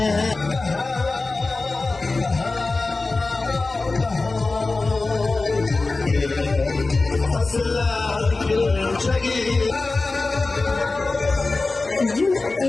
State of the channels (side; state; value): right; quieter; 3.5 dB